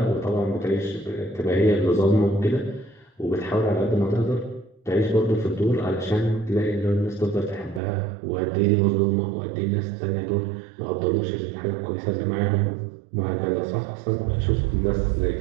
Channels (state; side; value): drops out; left; at 7.8 s